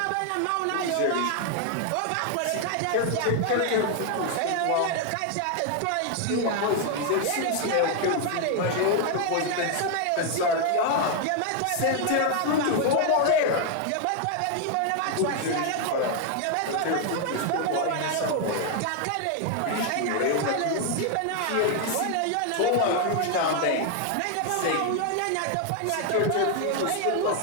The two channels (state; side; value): different; both; correlation 0.01